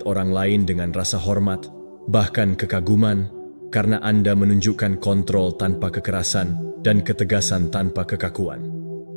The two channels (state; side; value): inverted; both; correlation -1.00